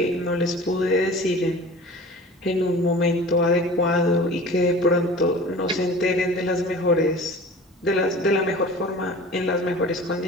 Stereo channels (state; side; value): normal; both; correlation 0.40